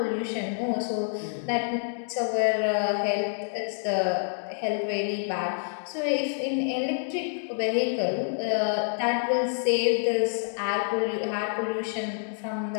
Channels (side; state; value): right; silent; digital silence